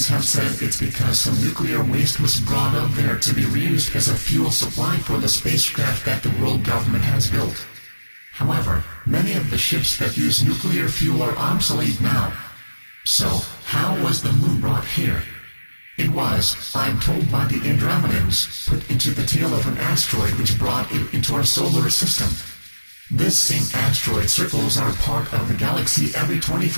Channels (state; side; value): inverted; both; correlation -1.00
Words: have said it's because some nuclear waste was brought up there to be reused as a fuel supply for the spacecraft that the world government has built. However, many of the ships that use nuclear fuel are obsolete now. So, how was the moon brought here? It was, I'm told by the Andromedans, put into the tail of an asteroid which brought it into our solar system. This same asteroid circles our part of the galaxy every